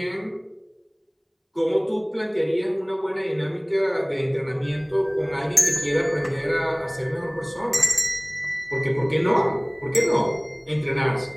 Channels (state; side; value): identical; both; correlation 1.00